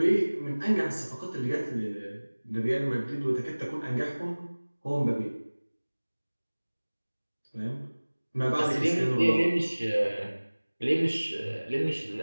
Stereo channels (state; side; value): inverted; both; correlation -1.00